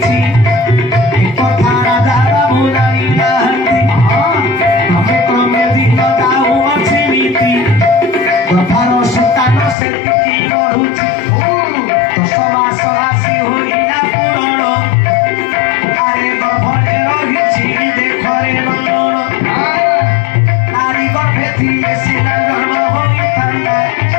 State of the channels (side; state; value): right; drops out; at 9.8 s